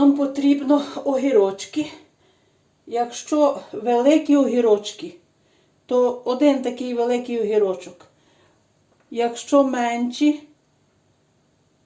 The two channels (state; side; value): identical; both; correlation 1.00